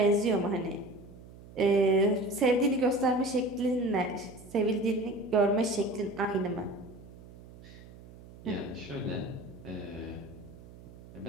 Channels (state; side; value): noise; right; hum, 19 dB below the sound